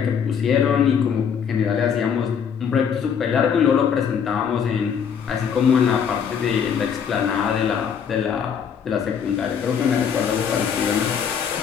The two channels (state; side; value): quieter; right; 7.3 dB